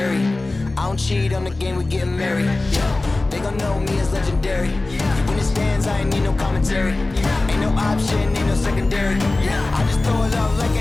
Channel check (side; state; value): right; quieter; 3.1 dB